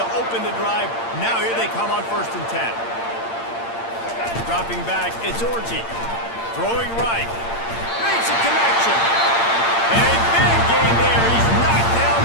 open the drive. Now here they come on 1st and 10. Dropping back, it's Orji. Throwing right. Makes a connection. And a big gain there. He's knocked down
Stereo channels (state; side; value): late; right; 8.7 ms